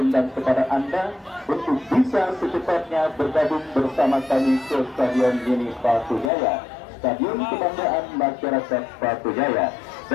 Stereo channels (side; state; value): right; drops out; at 6.3 s